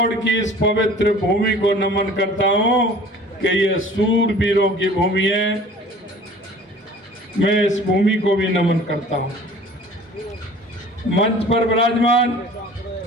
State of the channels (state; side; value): normal; both; correlation 0.46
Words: की इस पवित्र भूमि को नमन करता हूं कि ये सूरवीरों की भूमि है। मैं इस भूमि को भी नमन करता हूं। मंच पर विराजमान